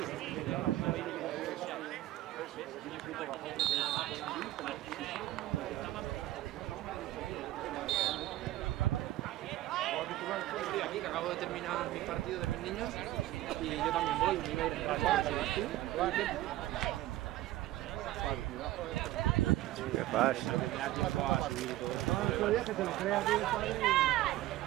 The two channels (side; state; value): left; quieter; 15.4 dB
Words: Estoy aquí, que acabo de terminar mis partidos de mis niños y yo también voy, me iba a ir en rato. ¿Qué pasa?